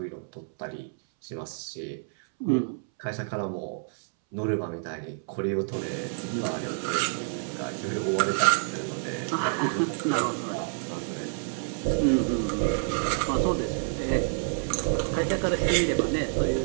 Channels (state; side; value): silent; left; 59 dB below the other